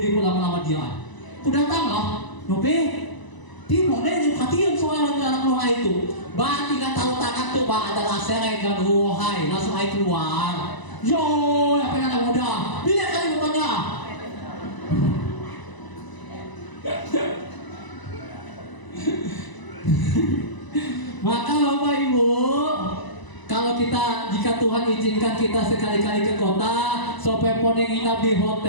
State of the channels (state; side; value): late; right; 1.0 ms